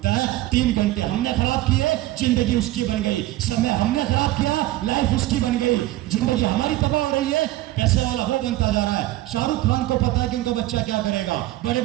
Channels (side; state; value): left; quieter; 16.4 dB